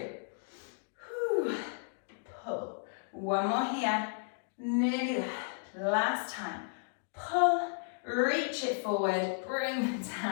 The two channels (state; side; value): silent; right; digital silence